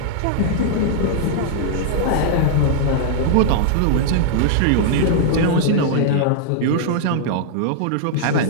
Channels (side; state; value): both; different; correlation -0.01